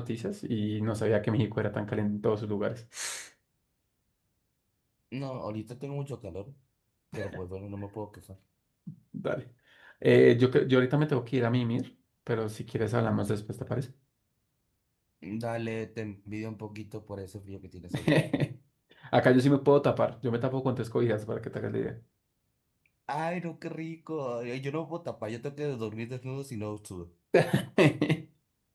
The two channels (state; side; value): identical; both; correlation 1.00